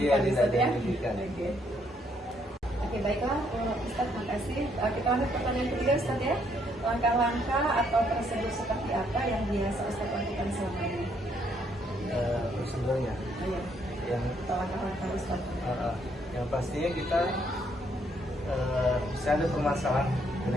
Iya, tidak Ustaz ada ya. yang dirugikan. Oke, baiklah Ustaz, makasih. Kita lanjut pertanyaan ketiga Ustaz ya. Langkah-langkah atau prosedur seperti apa yang biasa Ustaz lakukan selama ini? Prosedurnya Iya. yang Langkah-langkah Ustaz. yang pastinya kita bisa ada permasalahan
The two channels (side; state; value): both; normal; correlation 0.71